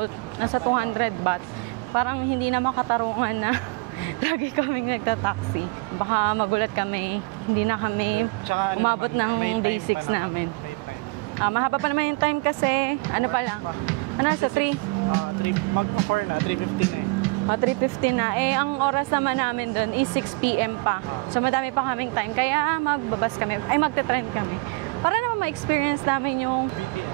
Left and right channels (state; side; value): quieter; left; 26.5 dB